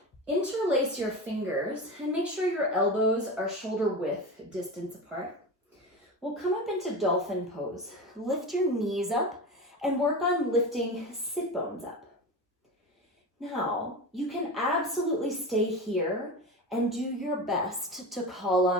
Interlace your fingers and make sure your elbows are shoulder width distance apart. We'll come up into Dolphin Pose. Lift your knees up and work on lifting sit bones up. Now, you can absolutely stay here and do your best to call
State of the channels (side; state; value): both; normal; correlation 0.26